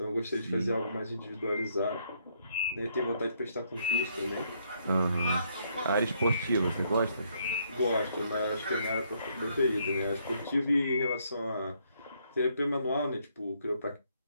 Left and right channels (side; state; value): both; inverted; correlation -0.72